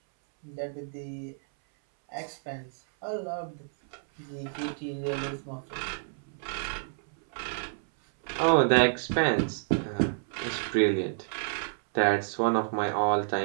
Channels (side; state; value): left; silent; 58 dB below the other